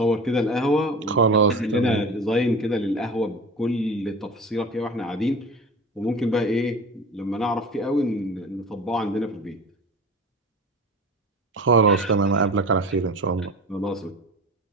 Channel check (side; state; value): both; normal; correlation 0.35